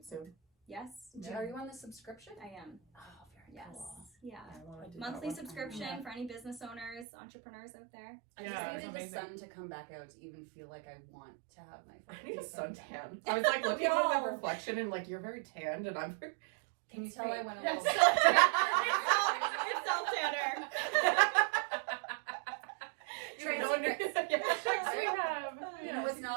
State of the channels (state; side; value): drops out; left; at 7.1 s